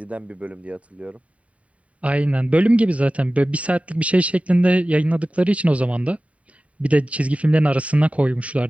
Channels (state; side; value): late; left; 0.066 ms